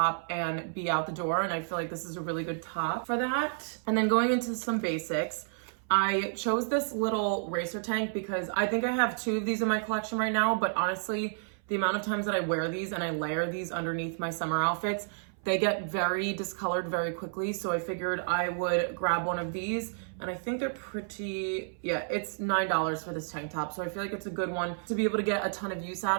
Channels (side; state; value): left; silent; 57 dB below the other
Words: and be out the door. And I feel like this is a really good top for that. And then going into some basics, I chose this little racer tank because I think I have 2 of these in my collection right now, but honestly, the amount of times that I wear these and I layer these underneath my summer outfits, they get very discolored very quickly. So I figured I would grab one of these and I think they're pretty, yeah, it's $9 for this tank top. So I feel like it's a good one to be able to get a ton of use